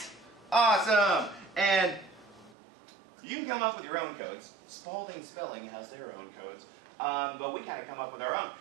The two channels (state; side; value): drops out; left; at 2.6 s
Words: Awesome. And you can come up with your own codes. Spalding Spelling has their own codes. But we kind of come up with our own.